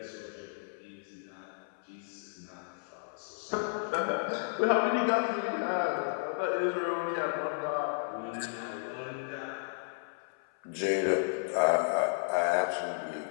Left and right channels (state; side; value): silent; right; 56 dB below the other